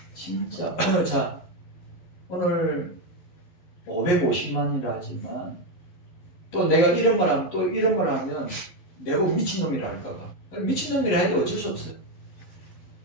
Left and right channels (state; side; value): late; right; 11 ms